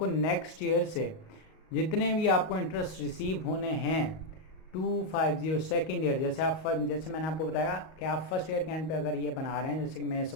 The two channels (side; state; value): right; late; 38 ms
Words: नेक्स्ट ईयर से जितने भी आपको इंटरेस्ट रिसीव होने हैं 250 सेकेंड ईयर, जैसे मैंने आपको बताया कि आप फर्स्ट ईयर के एंड पे अगर ये बना रहे हैं, जैसे कि मैं